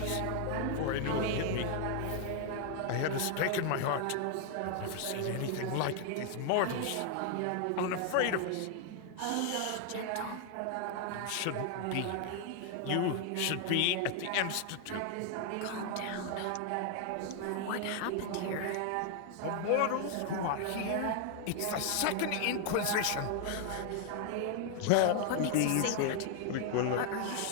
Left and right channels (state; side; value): different; both; correlation 0.00